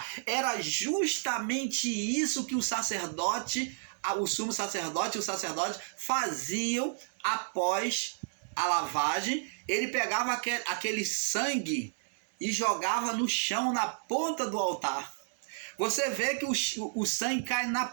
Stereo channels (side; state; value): left; silent; digital silence